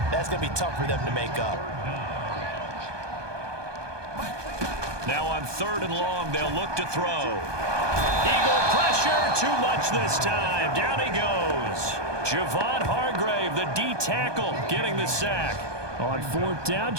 that's going to be tough for them to make up. Now on 3rd and long, they'll look to throw. Eagle pressure, too much this time. Down he goes. Javon Hargrave, the D tackle, getting the sack. On 4th down,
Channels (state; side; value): late; left; 1.2 ms